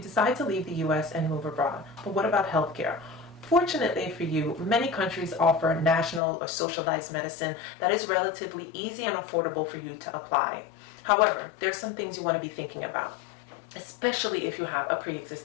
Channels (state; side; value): drops out; right; at 6.2 s